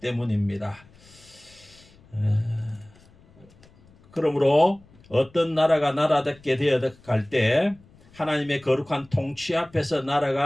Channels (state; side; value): noise; left; rumble, 27 dB below the sound